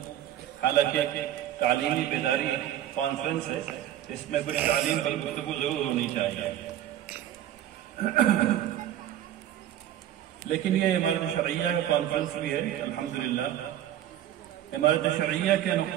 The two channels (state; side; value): quieter; left; 12.0 dB